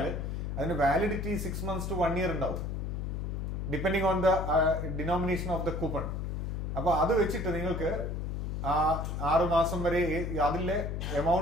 അതിന് വാലിഡിറ്റി 6 months to 1 year ഉണ്ടാവും, depending on the denomination of the coupon. അപ്പൊ അത് വെച്ചിട്ട് നിങ്ങൾക്ക് 6 മാസം വരെ അതിലെ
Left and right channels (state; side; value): noise; left; hum, 3 dB below the sound